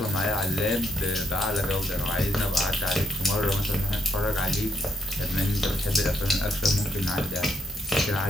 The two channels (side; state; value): both; normal; correlation 0.75